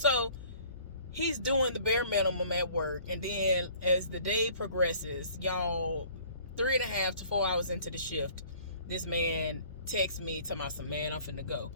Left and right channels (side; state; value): both; inverted; correlation -0.54